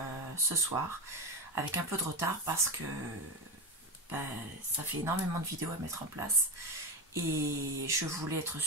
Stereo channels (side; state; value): both; normal; correlation 0.15